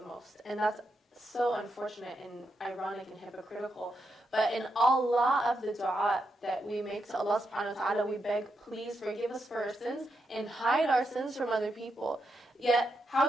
most. And that's so unfortunate and ironic and hypocritical. But in all of the dua that we make to Allah subhanahu wa ta'ala, we beg, please forgive us for our sins and hide our sins from other people. Yet,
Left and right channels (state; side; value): normal; both; correlation 0.83